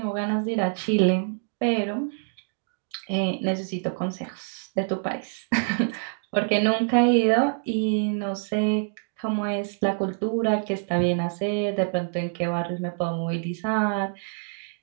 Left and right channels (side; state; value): left; silent; digital silence